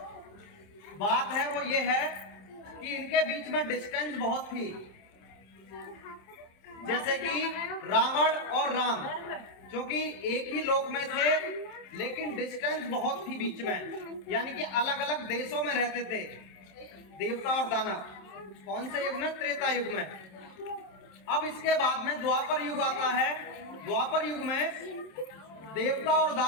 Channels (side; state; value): right; late; 27 ms